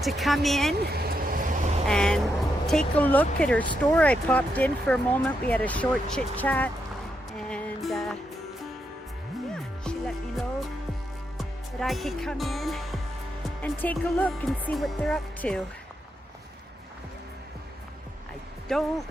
to come in and take a look at her store. I popped in for a moment. We had a short chit chat and yeah, she let me know that I could come in and take a look and see what they're up to.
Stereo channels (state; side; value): normal; both; correlation 0.82